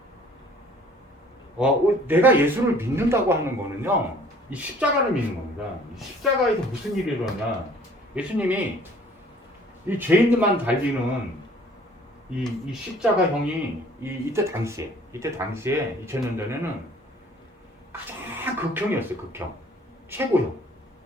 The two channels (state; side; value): normal; both; correlation 0.54